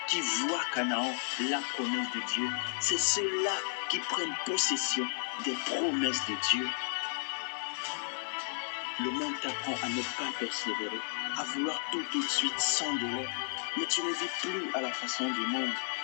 qui voient Canaan, la promesse de Dieu. C'est ceux-là qui prennent possession des promesses de Dieu. Le monde t'apprend à ne pas persévérer, à vouloir tout de suite sans délai. Mais tu ne vis plus à la façon du monde.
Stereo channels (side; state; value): right; silent; 56 dB below the other